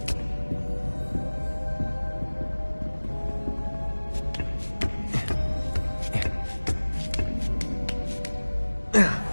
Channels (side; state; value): both; inverted; correlation -1.00